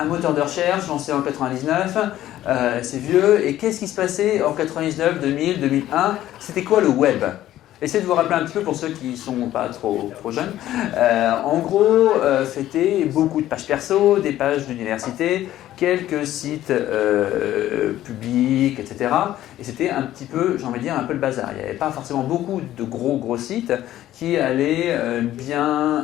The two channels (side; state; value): right; quieter; 13.5 dB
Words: moteur de recherche lancé en 99, c'est vieux. Et qu'est-ce qui se passait en 99, 2000, 2001? C'était quoi le web? Essayez de vous rappeler un petit peu pour ceux qui ne sont pas trop jeunes. En gros, c'était beaucoup de pages perso, des pages d'université, quelques sites publics, etc. Et c'était un petit peu, j'ai envie de dire, un peu le bazar. Il n'y avait pas forcément beaucoup de gros sites qui allaient